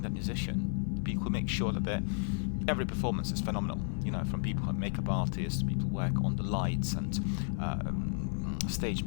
that musician, people who make sure that every performance is phenomenal. From people who are makeup artists, people who work on the lights, and stage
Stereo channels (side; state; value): right; silent; 56 dB below the other